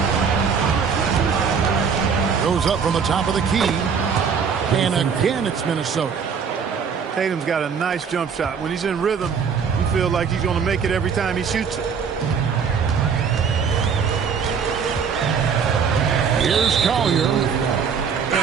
Goes up from the top of the key. And again, it's Minnesota. Tatum's got a nice jump shot. When he's in rhythm, you feel like he's going to make it every time he shoots it. Here's Collier.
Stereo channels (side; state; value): left; quieter; 6.4 dB